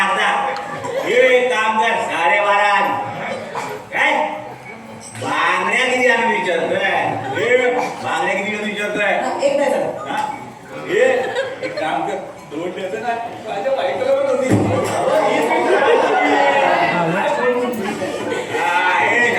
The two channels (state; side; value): identical; both; correlation 1.00